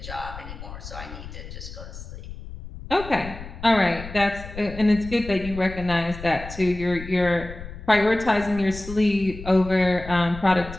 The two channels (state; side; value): noise; left; rumble, 12 dB below the sound